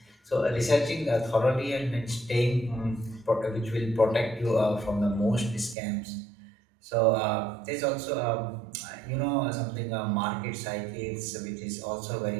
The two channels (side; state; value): left; drops out; at 5.8 s